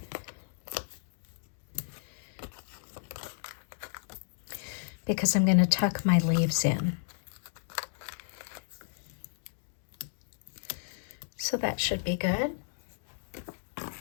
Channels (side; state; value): right; silent; digital silence